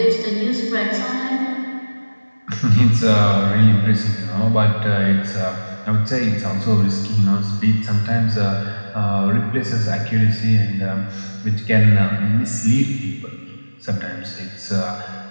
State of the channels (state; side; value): inverted; both; correlation -1.00